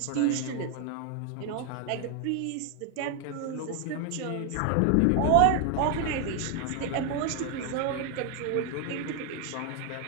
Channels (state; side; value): different; both; correlation 0.00